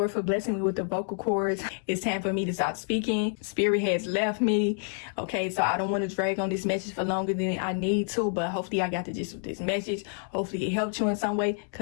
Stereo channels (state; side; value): silent; right; 59 dB below the other